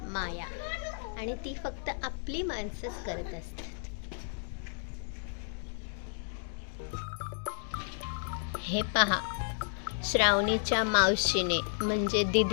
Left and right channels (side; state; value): right; silent; digital silence